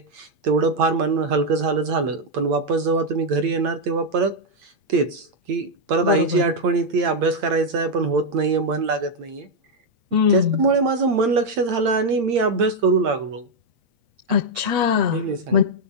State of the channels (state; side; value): late; left; 8.7 ms